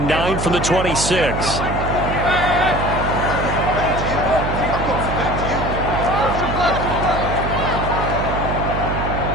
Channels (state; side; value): noise; right; hum, 3 dB below the sound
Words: 9 from the 26.